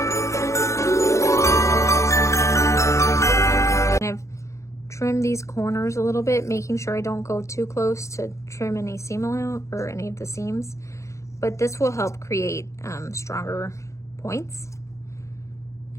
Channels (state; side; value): late; right; 0.14 ms